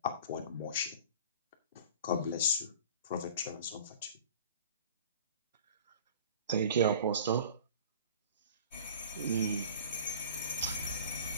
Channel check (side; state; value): both; inverted; correlation -0.41